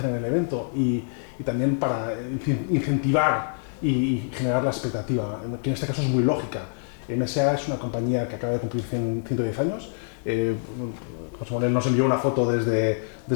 en el evento y también para incentivar y generar la expectativa, que en este caso es muy lógica. MSA es una compañía que acaba de cumplir 110 años. José Manuel nos envió una foto desde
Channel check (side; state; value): right; silent; digital silence